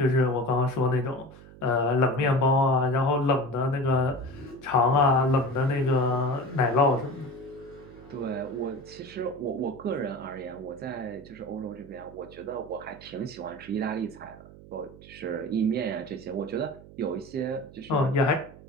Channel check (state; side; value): noise; right; hum, 19 dB below the sound